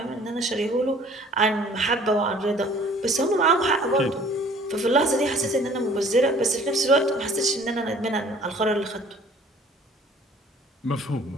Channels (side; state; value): both; normal; correlation 0.53